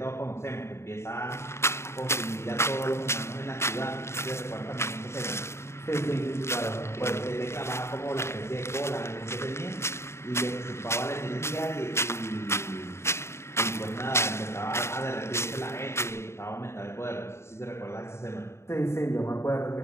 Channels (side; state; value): right; late; 0.13 ms